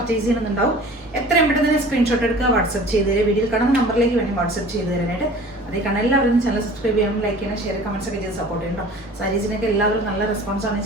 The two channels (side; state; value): both; normal; correlation 0.45